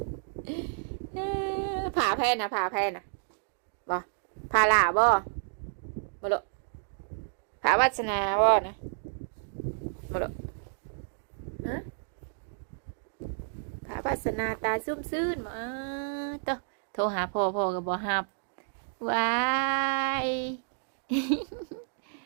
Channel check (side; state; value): left; silent; digital silence